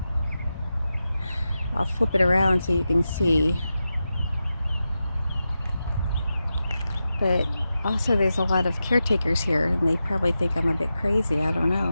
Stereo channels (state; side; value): inverted; both; correlation -0.91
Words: I'll flip it around so you can see. But also there's a lot of caretakers here and they probably think I'm a bit crazy. I don't